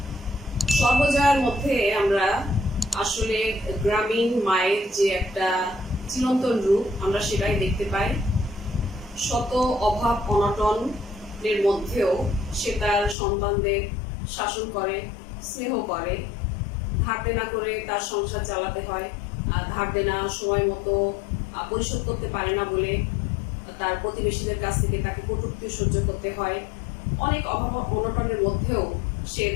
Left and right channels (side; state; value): right; drops out; at 13.2 s